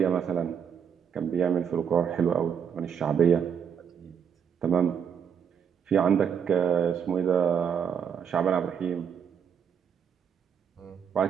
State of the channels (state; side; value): quieter; left; 7.6 dB